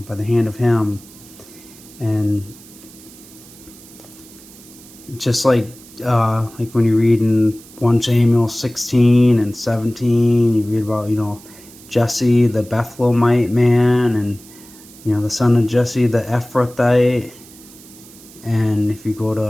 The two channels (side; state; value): right; noise; hiss, 21 dB below the sound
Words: by the hand of him. And just like when you read in 1 Samuel 16 and 17, you read about, Jesse the Bethlehemite man, and, the son of Jesse the Ephrathite. And if you go